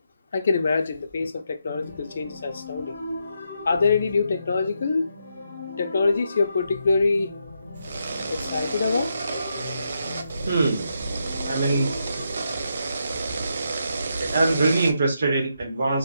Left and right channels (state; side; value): inverted; both; correlation -0.81